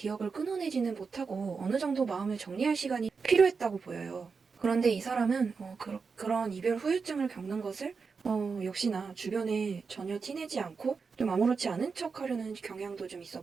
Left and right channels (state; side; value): quieter; left; 5.1 dB